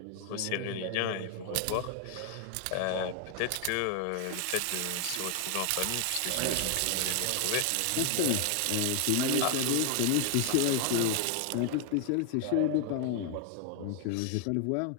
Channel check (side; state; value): both; different; correlation 0.00